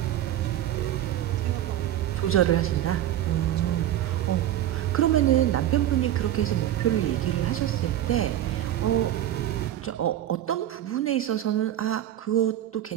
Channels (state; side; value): quieter; left; 12.2 dB